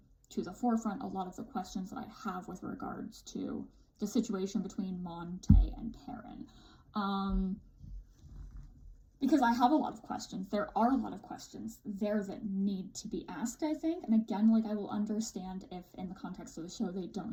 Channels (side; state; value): both; identical; correlation 1.00